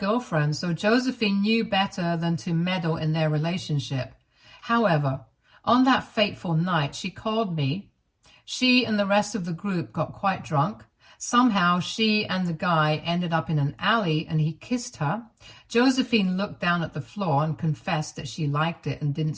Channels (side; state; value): both; identical; correlation 1.00